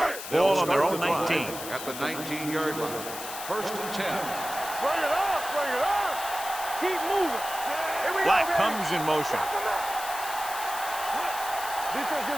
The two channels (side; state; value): left; noise; hiss, 9 dB below the sound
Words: Ball on their own 19. At the 19-yard line. First and 10. Bring it up. Bring it up. Keep moving. Here we Black go, baby. comes in motion. Defense,